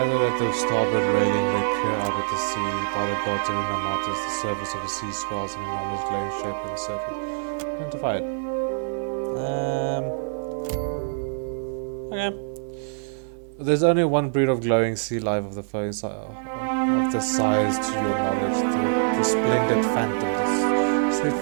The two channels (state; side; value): silent; left; digital silence